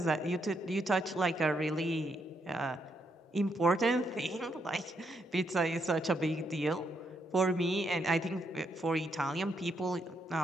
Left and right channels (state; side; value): normal; both; correlation 0.77